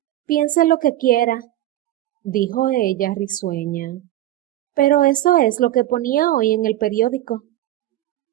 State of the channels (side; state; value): left; quieter; 14.2 dB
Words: Piense lo que quiera, dijo ella risueña. Pero eso es lo que ponía hoy en el periódico.